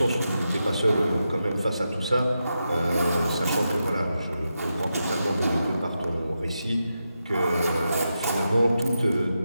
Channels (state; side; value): inverted; both; correlation -0.88